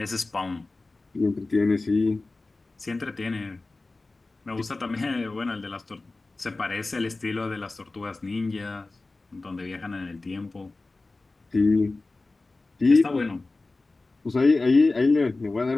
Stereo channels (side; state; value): right; quieter; 3.3 dB